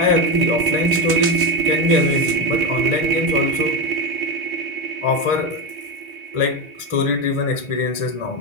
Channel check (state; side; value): late; left; 2.7 ms